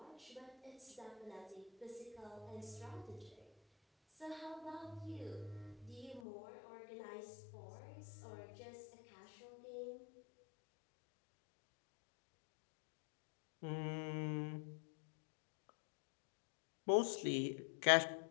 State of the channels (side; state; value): right; drops out; at 6.2 s